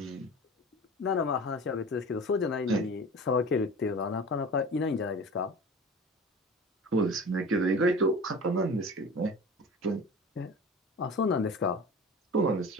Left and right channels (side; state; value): both; normal; correlation 0.37